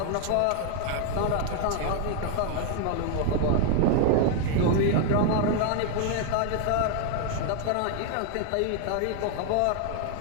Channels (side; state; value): both; different; correlation 0.00